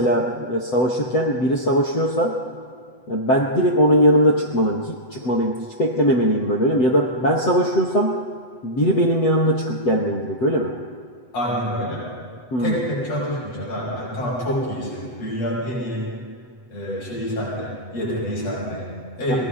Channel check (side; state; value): right; late; 8.0 ms